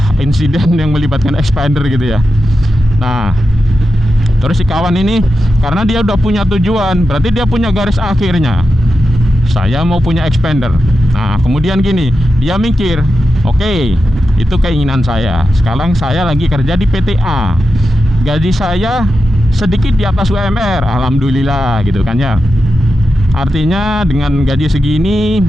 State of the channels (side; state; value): both; normal; correlation 0.90